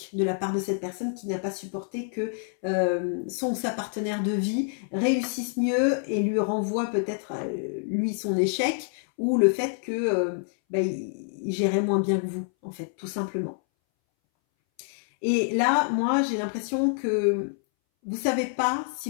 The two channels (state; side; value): silent; right; 60 dB below the other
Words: de la part de cette personne qui n'a pas supporté que son ou sa partenaire de vie réussisse mieux et lui renvoie peut-être lui son échec, ou le fait que il gérait moins bien que vous, en fait, tout simplement. Et là, moi, j'ai l'impression que vous savez pas